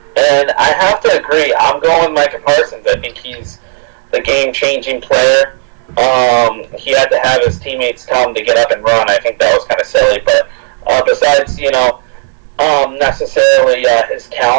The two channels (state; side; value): silent; left; 55 dB below the other